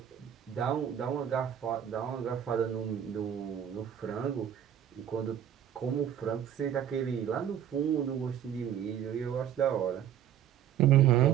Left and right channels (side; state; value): left; quieter; 9.9 dB